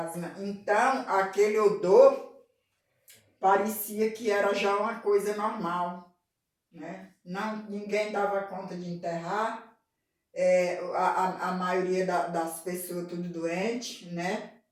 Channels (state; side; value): identical; both; correlation 1.00